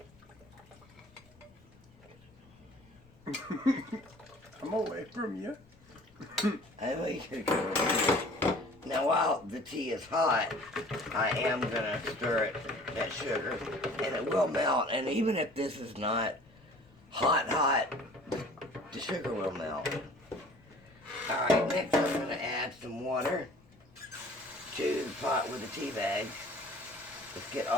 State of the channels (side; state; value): left; noise; rumble, 27 dB below the sound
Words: I'm away from you. I know you could go over here. Now while the tea is hot, I am going to stir that sugar, and it will melt. And even if this is not hot, the sugar will melt. Alright, next I'm going to add some water to the pot with the tea bags. Let's get